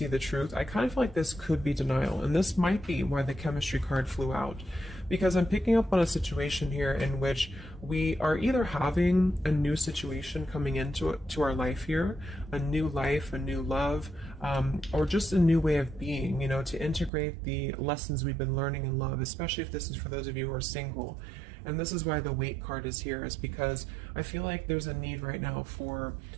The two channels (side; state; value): left; drops out; at 17.1 s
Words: the truth, I kind of feel like this could be denial. And this might be why the chemistry card flew out. Because I'm picking up on a situation here in which we are either having a new situation coming into our life here, a new life, a new love, or just a new way of being, you know, to integrate the lessons we've been learning in love, especially if this is for those of you who are single. And this is why the weight card is here, is because I feel like there's a need right now for